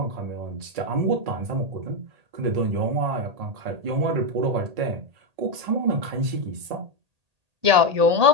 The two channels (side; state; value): left; late; 1.8 ms